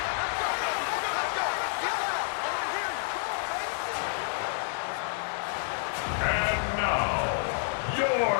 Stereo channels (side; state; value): right; silent; digital silence